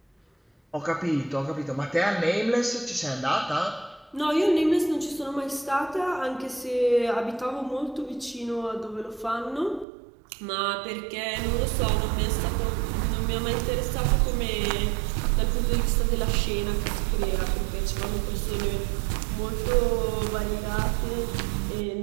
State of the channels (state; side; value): drops out; left; at 9.9 s